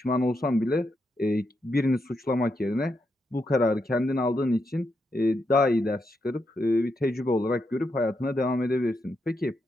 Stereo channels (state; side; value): normal; both; correlation 0.82